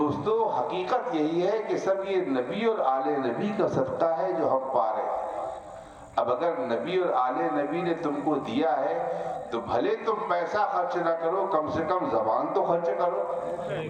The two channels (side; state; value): both; identical; correlation 1.00